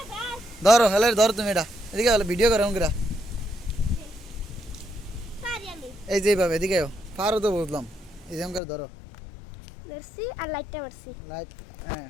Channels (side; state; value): right; drops out; at 8.6 s